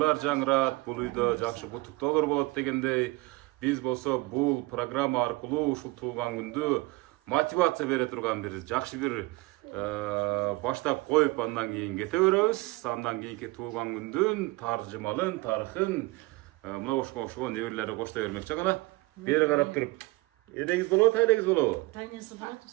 жаңырат, бул үйдө жакшы куттуктоолор болот дегендей. Биз болсо бул программа аркылуу ушул туулган күндү мотивация бере турган бир жакшы бир баштап коюп, андан кийин кете беребиз. Андан кийинки туулган күндүн таржымалын, тарыхын мына ошого неберелери коштой бермекчи. Кана бери карап туруп, элеңиз болобу, тайлеңиз болобу? Тайнеси болот,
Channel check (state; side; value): quieter; left; 22.7 dB